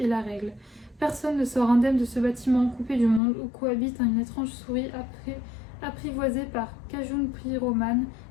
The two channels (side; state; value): right; drops out; at 3.2 s